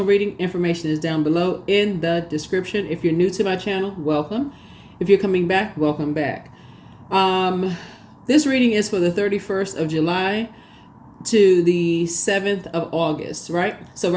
reading, information is down below in the description. If you're new to my channel, welcome. If you're coming back, welcome back. This reading is for the 31st of July to the 7th of August, right? So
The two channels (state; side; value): identical; both; correlation 1.00